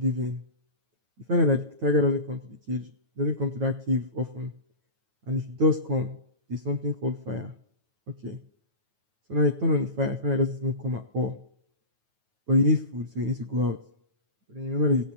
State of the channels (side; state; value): left; late; 9.2 ms